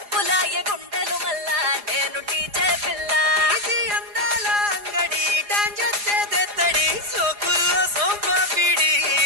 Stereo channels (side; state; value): left; late; 4.9 ms